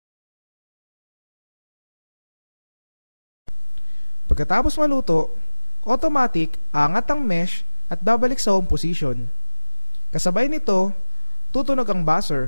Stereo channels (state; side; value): inverted; both; correlation -1.00